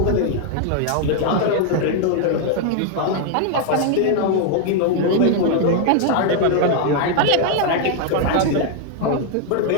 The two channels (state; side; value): different; both; correlation 0.00